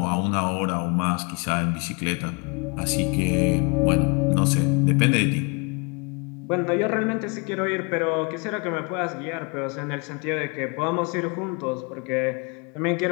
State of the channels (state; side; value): quieter; right; 32.1 dB